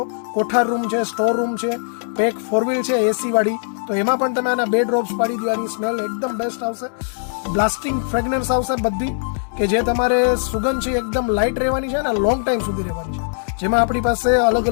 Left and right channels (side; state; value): right; silent; 66 dB below the other